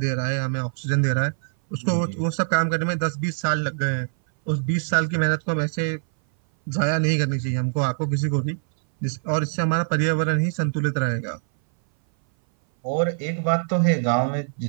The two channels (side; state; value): left; silent; 59 dB below the other